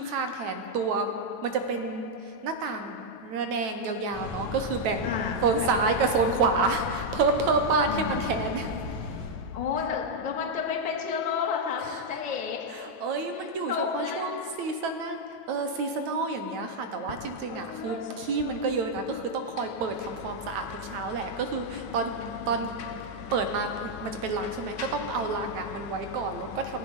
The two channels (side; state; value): left; late; 9.2 ms